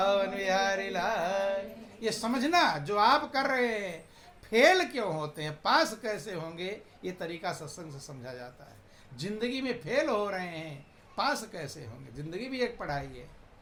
बिहारी लाल। ये समझना जो आप कर रहे हैं फेल क्यों होते हैं, पास कैसे होंगे, ये तरीका सत्संग से समझा जाता है। जिंदगी में फेल हो रहे हैं, पास कैसे होंगे? जिंदगी भी एक पढ़ाई है।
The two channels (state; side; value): identical; both; correlation 1.00